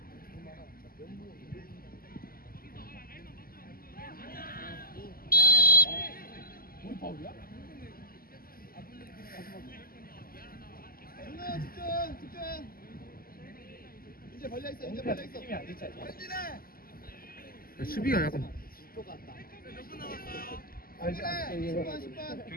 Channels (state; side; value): late; right; 0.42 ms